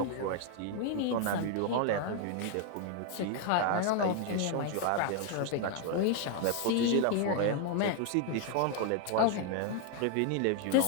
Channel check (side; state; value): both; different; correlation 0.00